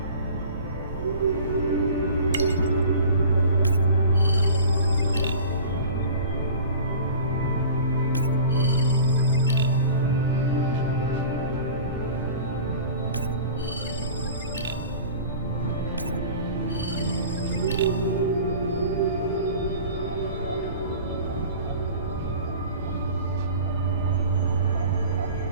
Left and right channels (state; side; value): inverted; both; correlation -0.41